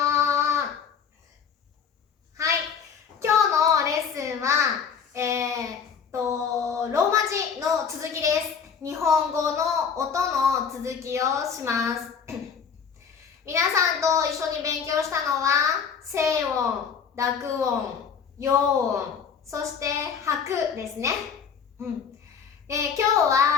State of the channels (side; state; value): right; quieter; 6.8 dB